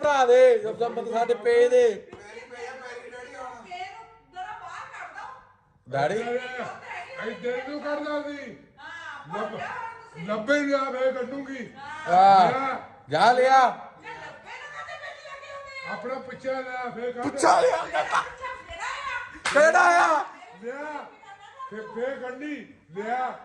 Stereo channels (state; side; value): identical; both; correlation 1.00